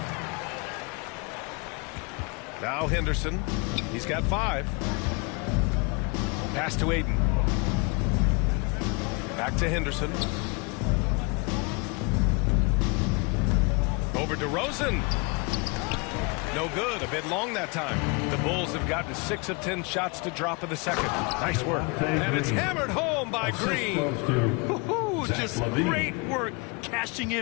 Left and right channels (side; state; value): right; quieter; 30.5 dB